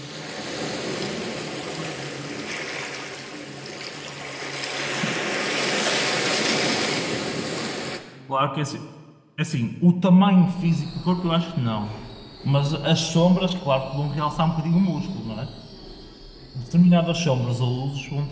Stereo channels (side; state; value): both; identical; correlation 1.00